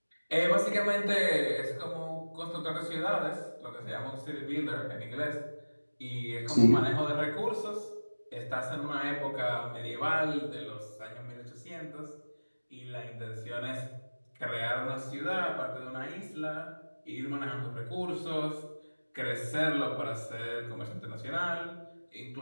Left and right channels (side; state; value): both; inverted; correlation -1.00